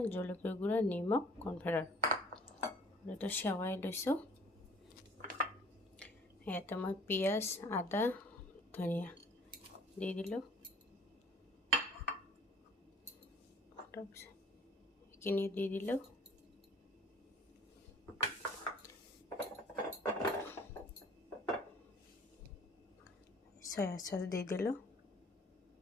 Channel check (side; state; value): both; normal; correlation 0.53